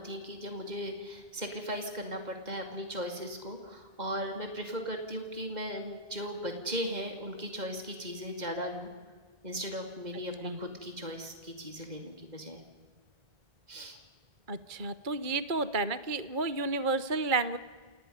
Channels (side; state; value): left; late; 2.0 ms